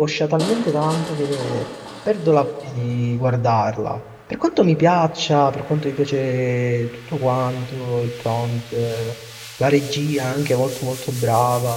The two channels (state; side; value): identical; both; correlation 1.00